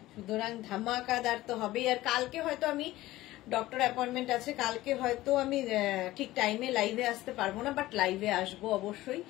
সুতরাং ধামাকাদার তো হবেই। আর কালকে হয়তো আমি ডক্টর অ্যাপয়েন্টমেন্ট আছে কালকে, হয়তো আমি ঠিক টাইমে লাইভে আসতে পারবো না, বাট লাইভে আসবো অবশ্যই।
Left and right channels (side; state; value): right; quieter; 16.8 dB